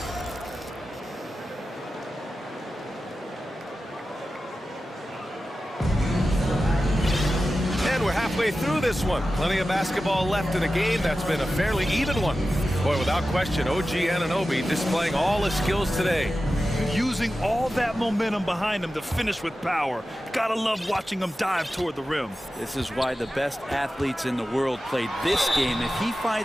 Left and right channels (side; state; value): both; normal; correlation 0.93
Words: Through this one. Plenty of basketball left in a game that's been a fairly even one. Boy, without question, OG Anunoby displaying all his skills today. Using all that momentum behind him to finish with power. Gotta love watching him dive toward the rim. This is why the best athletes in the world play this game. If he